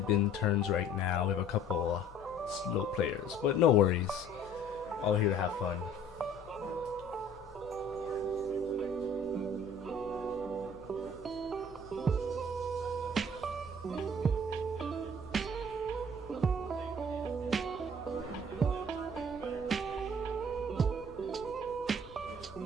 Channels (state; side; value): normal; both; correlation 0.52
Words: been turns right now. We have a couple slow players, but no worries. All here to have fun.